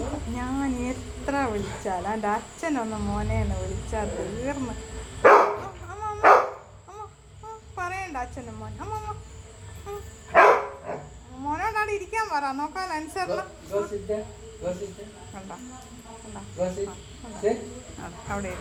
ഞാൻ എത്ര വിളിച്ചാൽ എൻ്റെ അച്ഛനൊന്ന് മോനെന്ന് വിളിച്ചാൽ തീർന്ന്. പറയണ്ട അച്ഛനും മോൻ. മോനോടാണ് ഇരിക്കാൻ പറ. നോക്കാൻ അനുസരണം കണ്ട അവിടെ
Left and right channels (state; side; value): identical; both; correlation 1.00